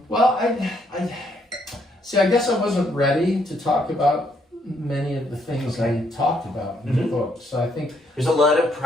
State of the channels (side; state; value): both; normal; correlation 0.71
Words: I guess I wasn't ready to talk about many of the things I talked about in the book. So I think there's a lot of